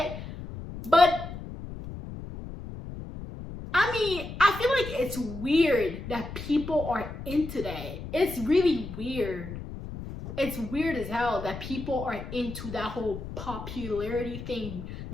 But I mean, I feel like it's weird that people are into that. It's really weird. It's weird as hell that people are into that whole popularity thing,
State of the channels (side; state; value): left; noise; rumble, 10 dB below the sound